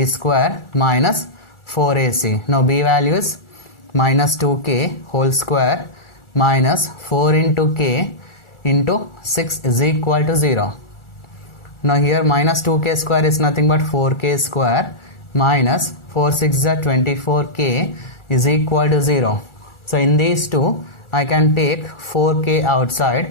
square minus 4ac. Now b value is minus 2k whole square minus 4 into k into 6 is equal to 0. Now here minus 2k square is nothing but 4k square minus 4 6 are 24k is equal to 0. So in these two I can take 4k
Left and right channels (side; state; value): right; late; 1.4 ms